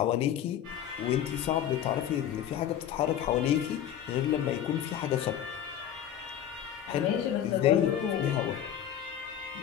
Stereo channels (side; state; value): right; quieter; 10.3 dB